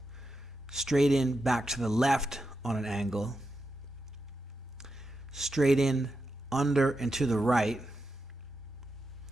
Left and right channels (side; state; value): both; normal; correlation 0.88